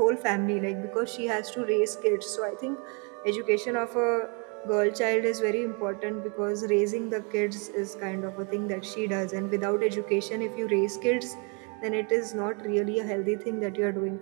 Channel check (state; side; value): quieter; left; 34.9 dB